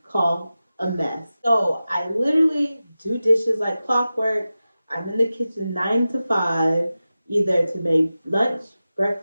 called a mess. So I literally do dishes like clockwork. I'm in the kitchen 9 to 5, either to make lunch,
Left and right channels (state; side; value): inverted; both; correlation -0.95